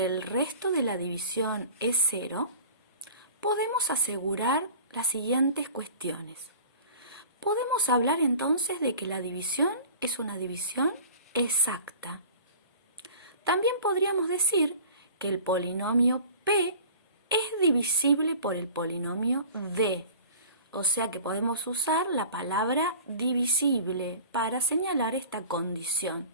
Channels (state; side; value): inverted; both; correlation -0.42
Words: el resto de la división es 0, podemos asegurar las siguientes cuestiones. Podemos hablar entonces de que la división es una división exacta. También podríamos decir que el polinomio p es divisible por el polinomio d. O sea que podemos usar la palabra divisible para señalar esta condición